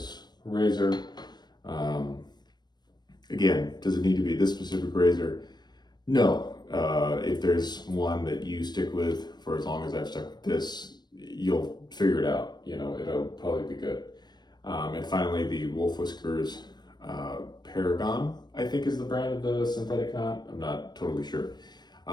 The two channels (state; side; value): late; right; 0.21 ms